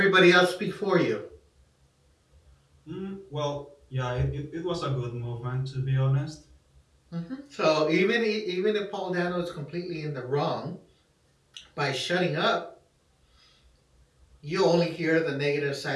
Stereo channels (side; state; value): both; identical; correlation 1.00